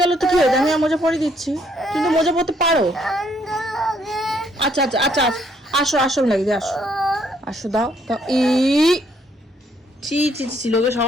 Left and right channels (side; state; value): both; normal; correlation 0.69